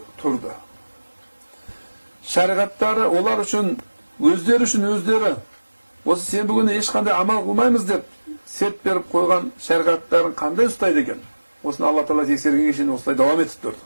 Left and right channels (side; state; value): both; inverted; correlation -1.00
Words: тұрды. Шариғаттары олар үшін, өздері осы сенбі күні ешқандай амал қылмаймыз деп серт беріп қойған шариғаттарын қандай ұстайды екен? Осыны Алла тағала тексергенге шейін осылай давам етіп тұрды.